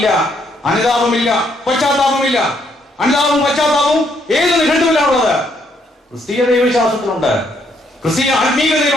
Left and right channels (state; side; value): normal; both; correlation 0.72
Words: അനുതാപമില്ല, പശ്ചാത്താപമില്ല. അനുതാപവും പശ്ചാത്താപവും ഏത് നിഘണ്ടുവിലാണുള്ളത്? ക്രിസ്തീയ ദൈവവിശ്വാസത്തിലുണ്ട്. ക്രിസ്തീയ